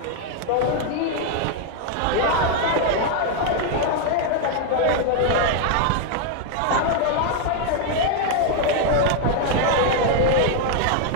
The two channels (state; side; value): different; both; correlation 0.00